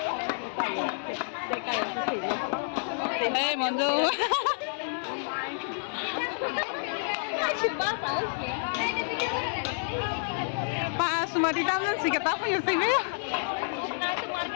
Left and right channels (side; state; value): right; silent; digital silence